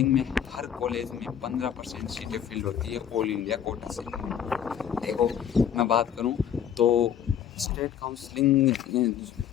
में हर कॉलेज में 15% सीटें फिल होती है ऑल इंडिया कोटा से। देखो, मैं बात करूं तो स्टेट काउंसलिंग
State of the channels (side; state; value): right; quieter; 9.0 dB